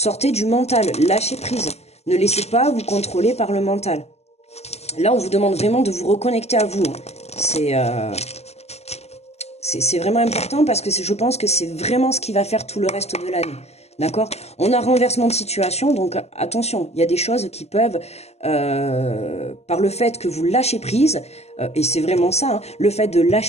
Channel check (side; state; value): right; late; 0.30 ms